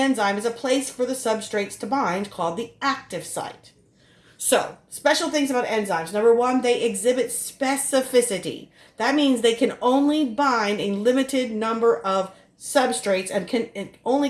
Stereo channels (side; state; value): both; identical; correlation 1.00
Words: is a place for the substrates to bind called the active site. So, special things about enzymes. Number one, they exhibit specificity. That means they can only bind a limited number of substrates and can only